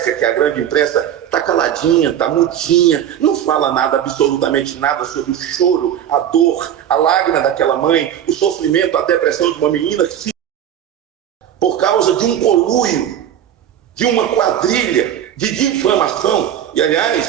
que a grande imprensa está caladinha, está mutinha, não fala nada, absolutamente nada sobre o choro, a dor, a lágrima daquela mãe, o sofrimento, a depressão de uma menina que se... por causa de um conluio, de uma quadrilha de difamação. E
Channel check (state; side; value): quieter; left; 10.1 dB